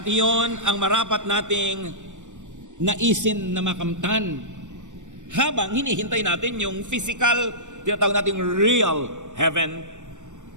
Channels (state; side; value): late; left; 0.85 ms